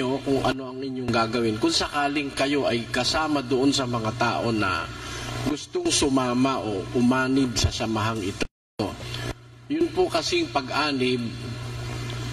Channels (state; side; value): identical; both; correlation 1.00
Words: kung ano ang inyong gagawin. Kung sakaling kayo ay kasama doon sa mga tao na gustong sumama o umanib sa samahang ito. Yun po kasing pag-anib,